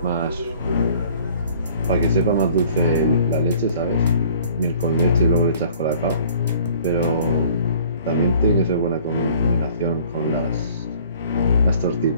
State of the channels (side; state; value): both; inverted; correlation -0.53